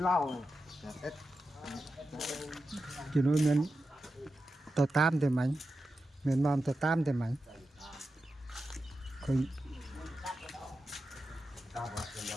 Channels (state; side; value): normal; both; correlation 0.90